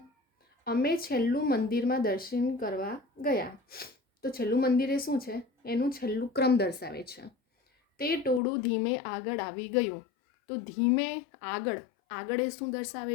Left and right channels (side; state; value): right; drops out; at 8.4 s